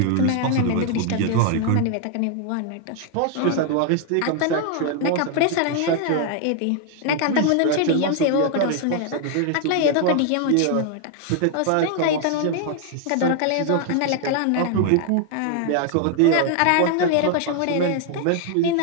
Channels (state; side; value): different; both; correlation 0.00